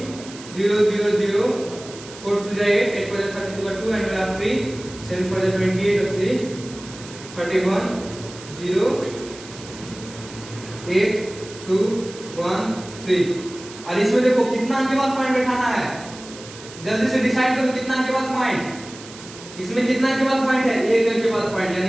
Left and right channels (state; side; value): noise; right; hiss, 16 dB below the sound